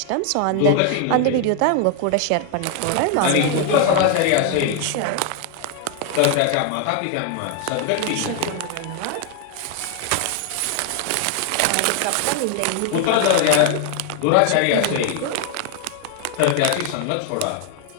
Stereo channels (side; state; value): both; different; correlation 0.00